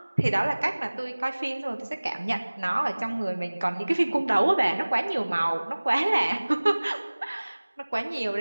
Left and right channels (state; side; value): inverted; both; correlation -1.00